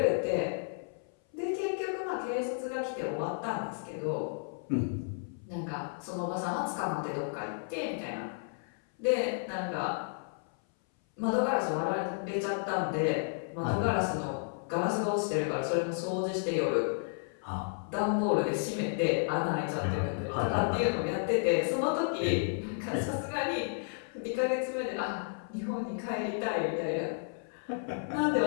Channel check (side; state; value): right; silent; 56 dB below the other